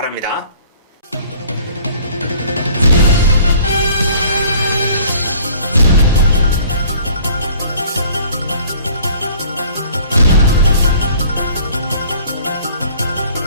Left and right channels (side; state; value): both; inverted; correlation -0.54